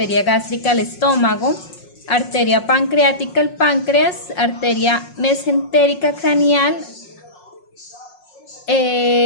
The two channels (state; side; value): late; right; 5.5 ms